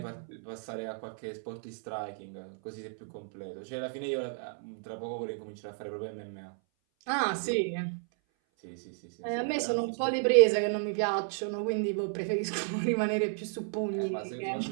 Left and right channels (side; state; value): left; silent; 56 dB below the other